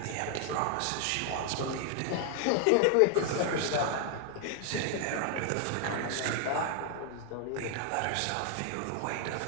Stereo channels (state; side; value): different; both; correlation 0.00